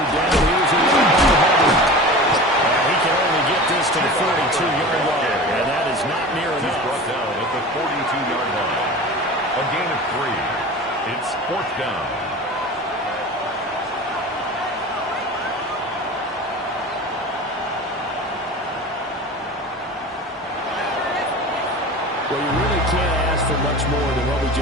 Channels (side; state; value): both; normal; correlation 0.34